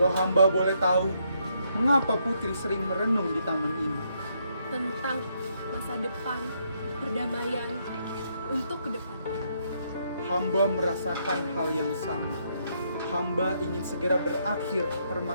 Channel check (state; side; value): inverted; both; correlation -0.74